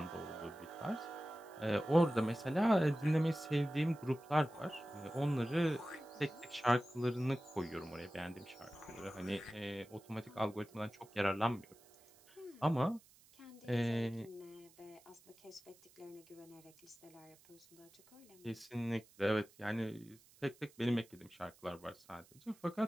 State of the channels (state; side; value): noise; right; hiss, 26 dB below the sound